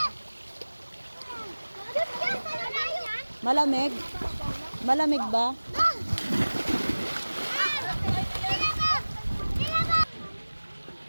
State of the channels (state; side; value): inverted; both; correlation -1.00